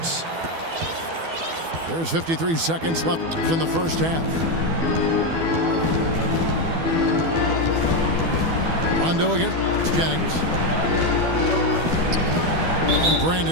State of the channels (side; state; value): left; late; 12 ms